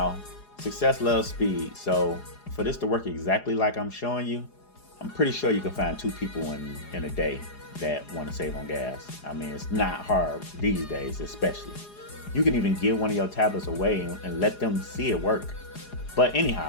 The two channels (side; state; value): right; late; 4.8 ms